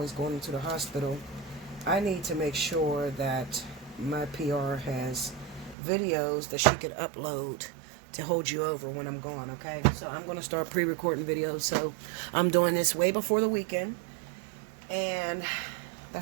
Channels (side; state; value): left; drops out; at 5.8 s